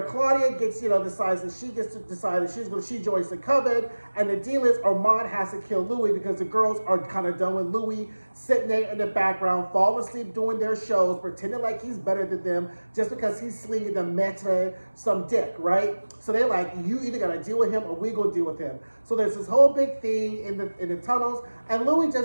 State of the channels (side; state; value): both; inverted; correlation -1.00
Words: Claudia decides that she joins the coven, and the deal is Armand has to kill Louis because the girls are kind of done with Louis sitting there in the background, falling asleep doing their shows, pretending like he's better than them just because he's slinging the meta some dick, right? So they're like, you either gotta deal with him or we gonna deal with him. So there's this whole big thing in the tunnels, and Louis